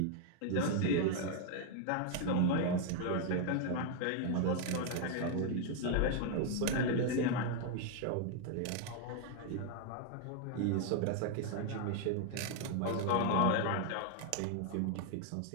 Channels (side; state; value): both; different; correlation 0.00